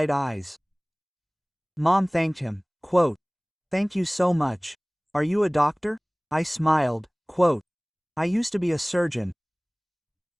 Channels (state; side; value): identical; both; correlation 1.00